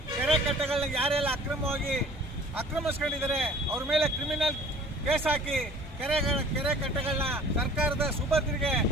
ಕೆರೆ ಕಟ್ಟೆಗಳನ್ನ ಯಾರೆಲ್ಲ ಅಕ್ರಮವಾಗಿ ಆಕ್ರಮಿಸ್ಕೊಂಡಿದ್ದಾರೆ ಅವ್ರ ಮೇಲೆ ಕ್ರಿಮಿನಲ್ ಕೇಸ್ ಹಾಕಿ ಕೆರೆ ಕಟ್ಟೆಗಳನ್ನ ಸರ್ಕಾರದ ಸುಭದ್ರಿಗೆ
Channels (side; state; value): both; normal; correlation 0.49